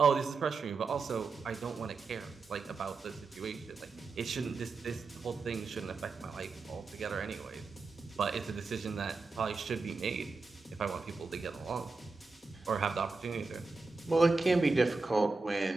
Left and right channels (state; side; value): quieter; left; 4.1 dB